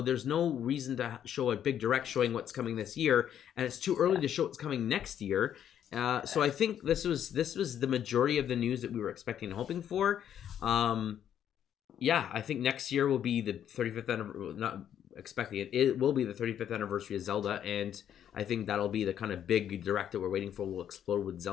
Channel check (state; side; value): quieter; right; 9.8 dB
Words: there's no reason to show a big direct showing what's coming this year, and it's too early to show what's coming next year. So I think this was the majority of the news that we were expecting and hoping for. I think next year will be the 35th anniversary. Not expecting it. It will be the 35th anniversary of Zelda, and I think that'll be the kind of big direct that we're waiting for. We'll explode with